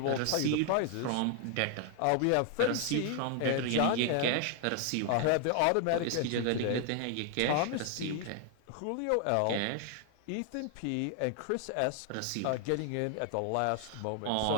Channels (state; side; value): different; both; correlation 0.00